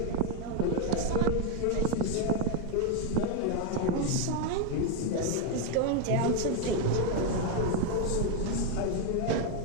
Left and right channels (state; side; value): different; both; correlation 0.02